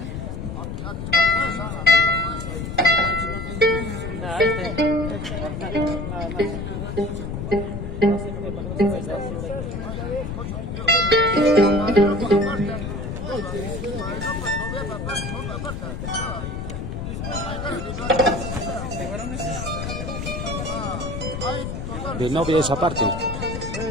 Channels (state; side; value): noise; left; rumble, 5 dB below the sound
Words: De novia esa parte.